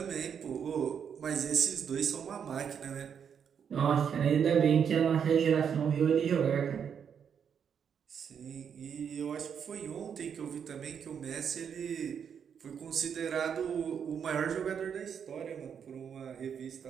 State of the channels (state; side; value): quieter; left; 7.6 dB